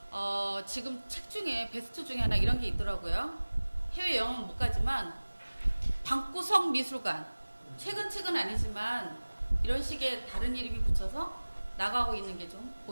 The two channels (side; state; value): both; inverted; correlation -1.00